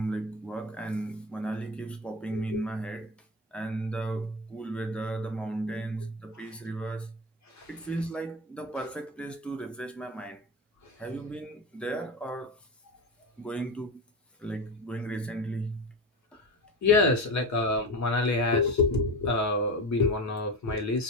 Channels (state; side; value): normal; both; correlation 0.24